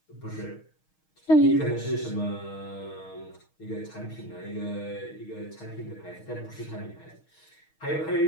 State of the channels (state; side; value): late; right; 6.4 ms